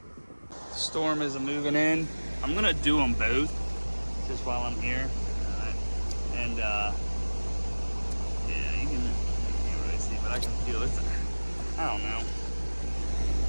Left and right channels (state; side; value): inverted; both; correlation -1.00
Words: The storm is moving in. I'm gonna do them both just while I'm here. And yeah, you can't really see, but I can feel it. I